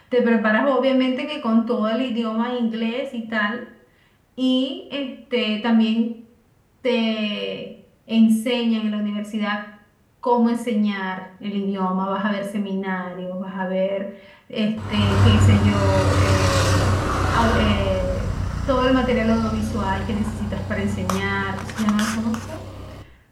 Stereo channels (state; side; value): identical; both; correlation 1.00